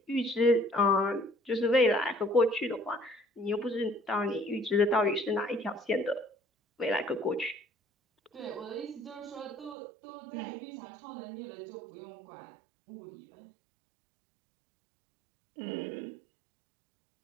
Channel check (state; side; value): drops out; left; at 9.8 s